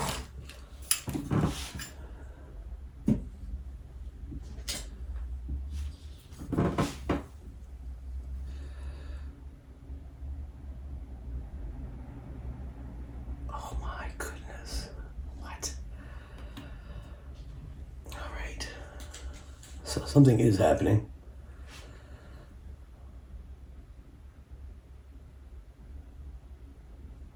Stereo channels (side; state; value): both; identical; correlation 1.00